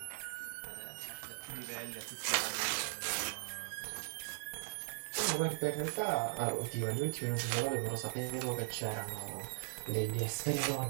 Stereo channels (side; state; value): left; silent; digital silence